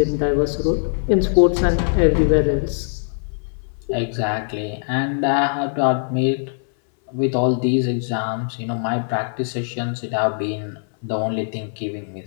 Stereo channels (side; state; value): right; silent; 60 dB below the other